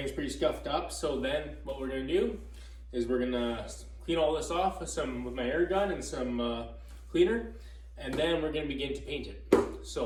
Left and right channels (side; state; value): both; identical; correlation 1.00